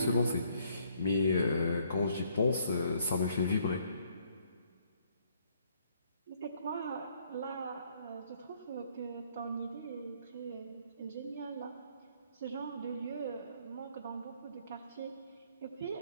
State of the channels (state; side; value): inverted; both; correlation -0.67